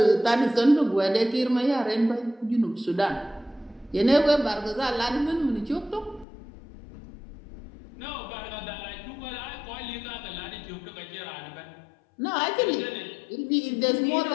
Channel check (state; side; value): drops out; right; at 6.2 s